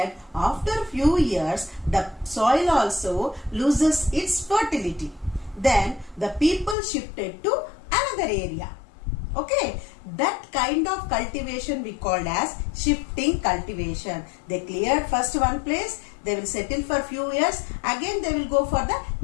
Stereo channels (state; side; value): drops out; right; at 6.8 s